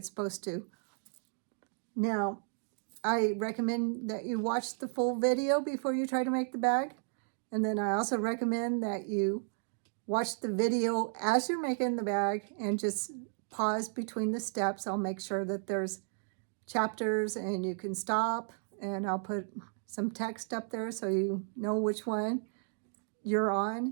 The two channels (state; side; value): silent; left; digital silence